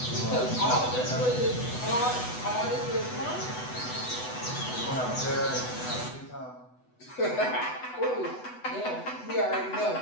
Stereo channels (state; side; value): late; right; 8.0 ms